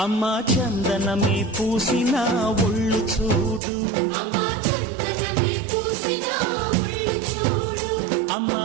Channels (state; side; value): drops out; left; at 3.6 s